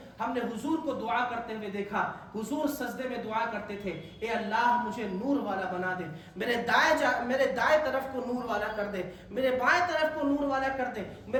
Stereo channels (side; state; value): both; identical; correlation 1.00